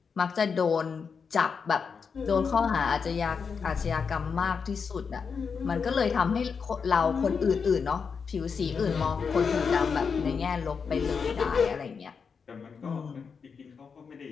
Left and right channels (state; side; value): quieter; right; 5.8 dB